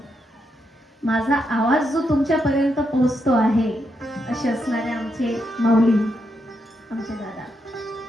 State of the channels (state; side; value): normal; both; correlation 0.81